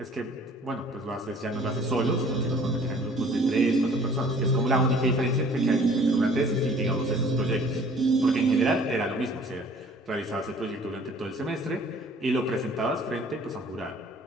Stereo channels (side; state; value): both; normal; correlation 0.53